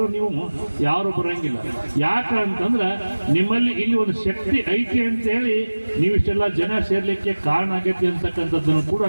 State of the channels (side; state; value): both; inverted; correlation -1.00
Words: ನೀವು ಯಾರು ಬರಂಗಿಲ್ಲ. ಯಾಕಂತಂದ್ರೆ ನಿಮ್ಮಲ್ಲಿ ಇಲ್ಲಿ ಒಂದು ಶಕ್ತಿ ಐತಿ ಅಂತೇಳಿ ನೀವು ಇಷ್ಟೆಲ್ಲ ಜನ ಸೇರ್ಲಿಕ್ಕೆ ಕಾರಣ ಆಗೈತಿ ಅಂತಕ್ಕಂಥದ್ದನ್ನು ಕೂಡ